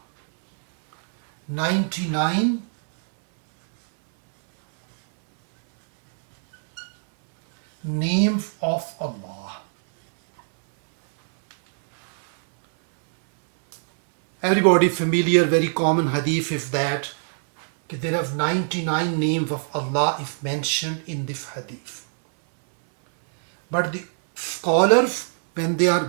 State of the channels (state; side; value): silent; left; 62 dB below the other